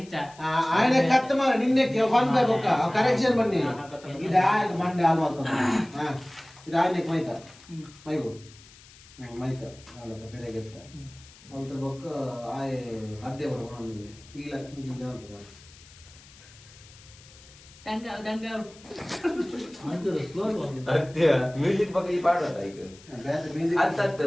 ఆయన కత్త మరి నిన్నే వన్ బై ఒక్క కరెక్షన్ బన్ని ఇది ఆయన మండే ఆల్వాల్తో ఇది ఆయన మైత మైబు మైత వాళ్ళతో పెరగెత్త వాళ్ళతో బొక్క ఆయ అద్దె పడుకోండి ఇలా కింద ಮ್ಯೂಸಿಕ್ ಬಗ್ಗೆ ಈ ಪಾಡೋದ ಈಗ ಅಂತ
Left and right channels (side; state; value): left; noise; hiss, 23 dB below the sound